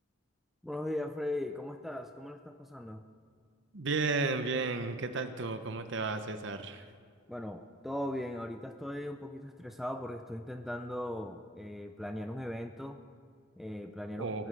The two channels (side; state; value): both; normal; correlation 0.44